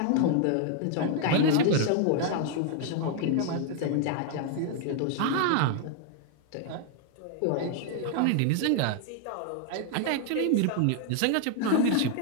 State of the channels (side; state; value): both; different; correlation 0.00